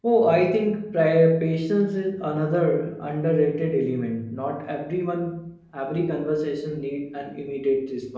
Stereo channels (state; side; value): identical; both; correlation 1.00